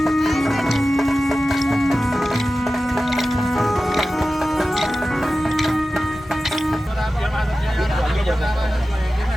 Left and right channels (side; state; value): both; normal; correlation 0.95